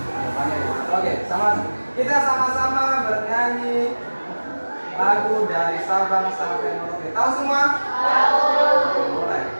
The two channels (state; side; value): inverted; both; correlation -1.00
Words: banyak yang mengantuk. Oke, kita sama-sama bernyanyi lagu dari Sabang sampai Merauke. Tahu semua? Tahu. Mulai.